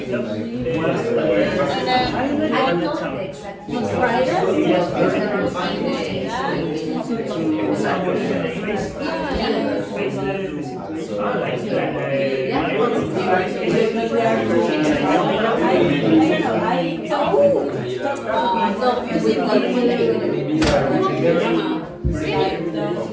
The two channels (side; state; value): both; identical; correlation 1.00